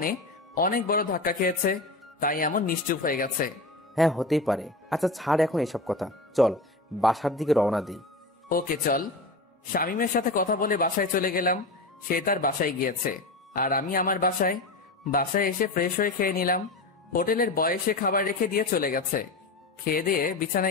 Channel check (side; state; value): right; quieter; 3.1 dB